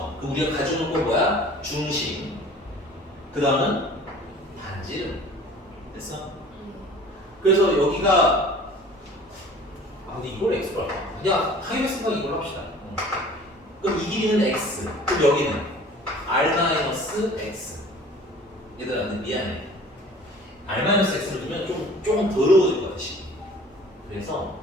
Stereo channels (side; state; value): both; normal; correlation 0.47